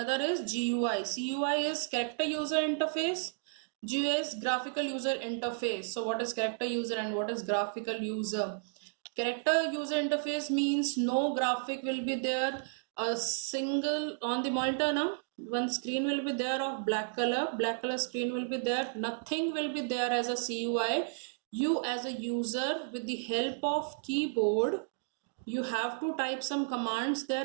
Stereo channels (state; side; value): silent; left; digital silence